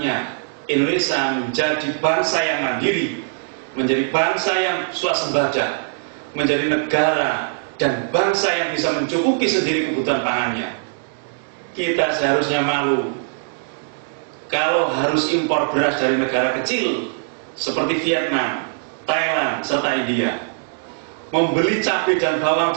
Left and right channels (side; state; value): left; silent; digital silence